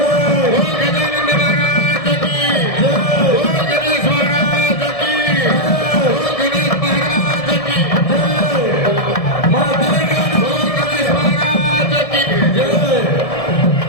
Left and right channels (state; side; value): late; right; 1.7 ms